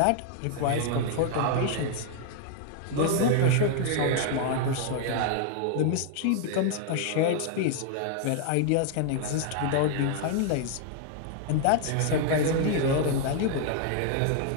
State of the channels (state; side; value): different; both; correlation 0.00